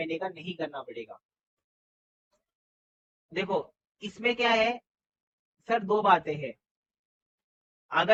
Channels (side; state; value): both; identical; correlation 1.00